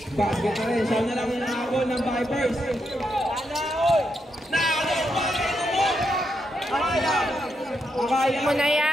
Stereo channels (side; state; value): both; normal; correlation 0.82